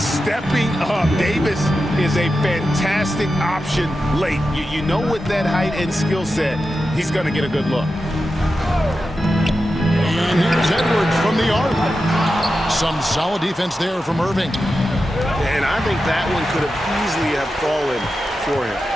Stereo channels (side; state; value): both; normal; correlation 0.91